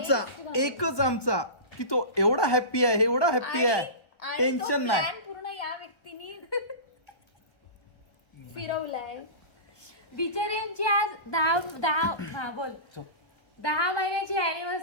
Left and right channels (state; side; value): late; right; 1.2 ms